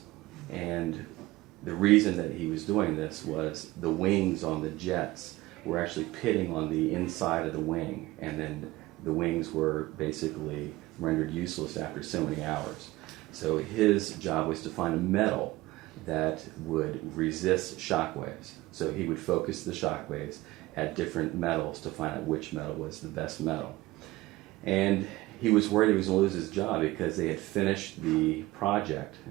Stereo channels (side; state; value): left; quieter; 18.8 dB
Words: And the reason that he was doing this was the wings on the jets were actually pitting on the inside of the wing, and then the wings were basically rendered useless after so many hours. So his job was to find a metal that would resist shock waves. So he would focus the shock waves at different metals to find out which metal was the best metal. And he was worried he was going to lose his job because they had finished the project,